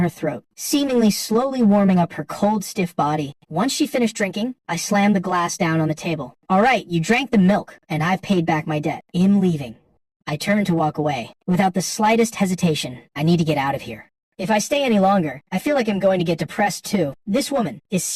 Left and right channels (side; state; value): both; identical; correlation 1.00